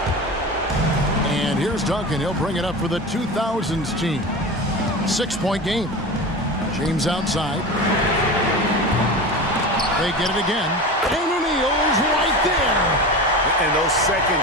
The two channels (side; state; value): both; normal; correlation 0.29